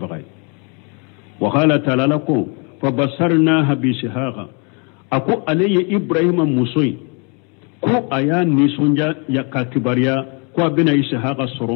وقال تعالى لكم فبصرناها بشهاق أكو علي إبراهيم موسوي كو أيان نيسونجا يكا كباريا kwa bina ishaqa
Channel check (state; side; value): quieter; right; 35.1 dB